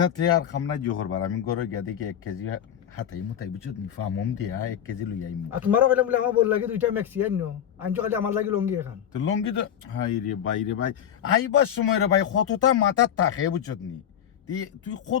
তে আর খামনা জোহর বার আমি গরু গিয়া দেখি 1 কেজি হাতাই মুতাই বুঝছ নি ফামম দিয়া 1 কেজি লই আইম আর তোমারও কইলাম বলে আমার বল লাগে দুইটা ম্যাক্সি আইনো আনছো খালি আমার লাগি লঙ্গি এখান তো লঙ্গি তো হাই রে ভাই আইবার সময় রে ভাই কতটা মাথা থাকে বুঝছত নি তুই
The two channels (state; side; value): quieter; right; 9.6 dB